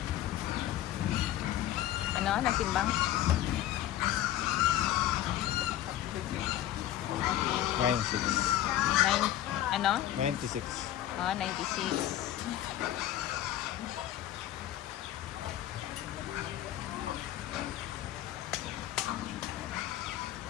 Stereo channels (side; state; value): right; quieter; 13.0 dB